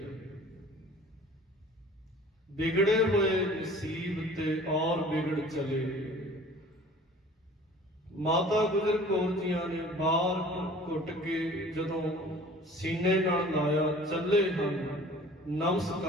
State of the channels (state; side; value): normal; both; correlation 0.47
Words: बिगड़े हुए नसीब ते और बिगड़ चले। माता गुजर कौर जियां ने बार घुट के जदों सीने नाल लाया, चले हन